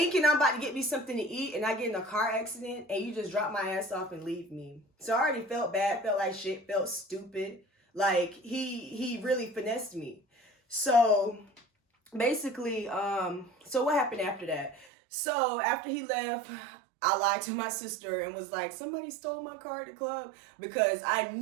I'm about to get me something to eat, and I get in a car accident and you just drop my ass off and leave me. So I already felt bad, felt like shit, felt stupid. Like he really finessed me. So basically, so what happened after that? So after he left, I lied to my sister and was like, somebody stole my car at the club, because I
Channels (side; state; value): left; drops out; at 14.9 s